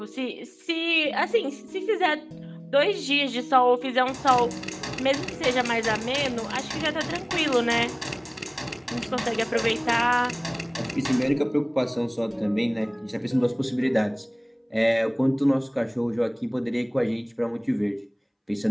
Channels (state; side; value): identical; both; correlation 1.00